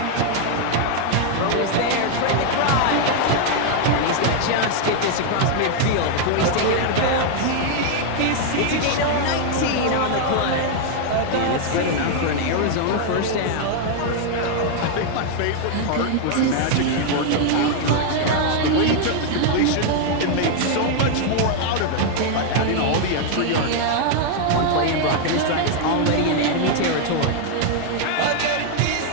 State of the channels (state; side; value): different; both; correlation 0.00